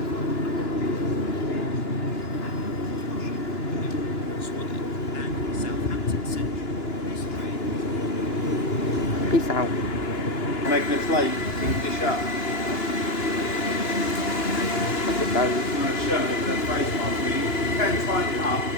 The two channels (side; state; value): right; late; 2.9 ms